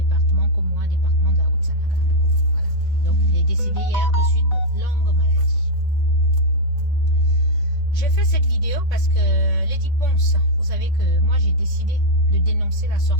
que moi, département de la Haute-Sanaga. Voilà. Donc, il est décédé hier de suite de longues maladies. J'ai fait cette vidéo parce que Lady Ponce, vous savez que moi j'ai décidé de dénoncer la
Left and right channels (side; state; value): right; late; 3.5 ms